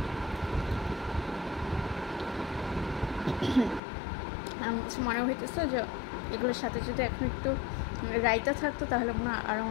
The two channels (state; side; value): drops out; right; at 3.8 s